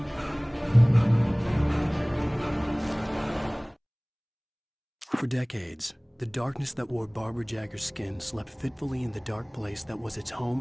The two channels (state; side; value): identical; both; correlation 1.00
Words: For decades, the darkness that wore Barbara Jagger's skin slept fitfully in the dark place that was its